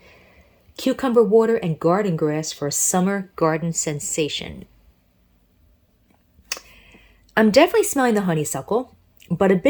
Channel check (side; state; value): both; identical; correlation 1.00